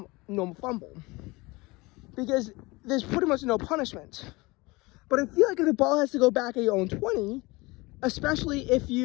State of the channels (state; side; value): quieter; right; 23.3 dB